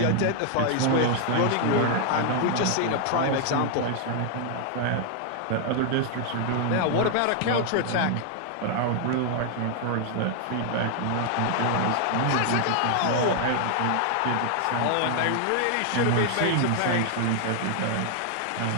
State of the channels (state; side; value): different; both; correlation 0.00